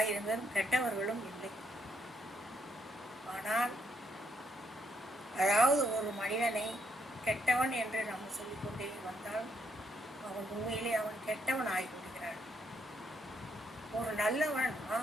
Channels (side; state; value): both; normal; correlation 0.75